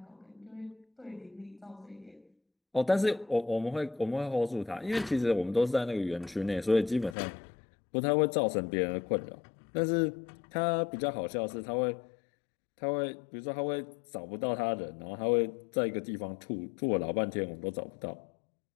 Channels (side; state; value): right; drops out; at 7.2 s